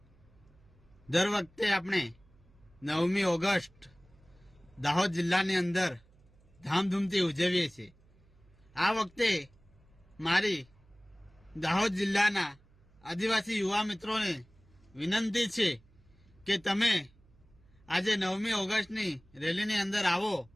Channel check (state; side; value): noise; right; hum, 29 dB below the sound